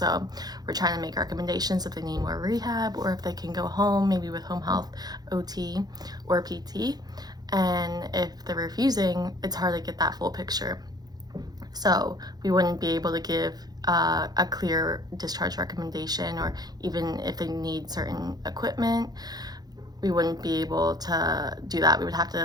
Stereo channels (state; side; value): late; left; 0.19 ms